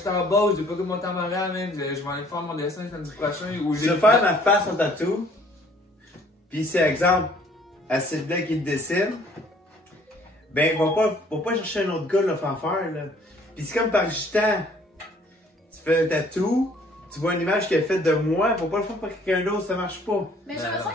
t'embauche, j'ai pas que mon temps moral, man. Je vais aller faire mon dessin samedi prochain. Ou Je vais faire ma face en tatou. Puis c'est exemple, à Sylvain qui le dessine. Ben, va pas chercher un autre gars là, faire faire là. Puis c'est comme par gitan. Tu fais un tatou, tu vois une image qui est faite de moi, faut pas le faire par quelqu'un d'autre, ça marche pas. Mais j'ai Ben, l'impression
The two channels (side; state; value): both; normal; correlation 0.58